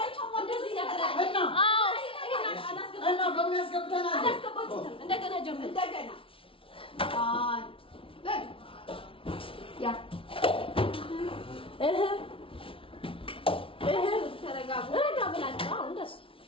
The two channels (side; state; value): right; late; 0.26 ms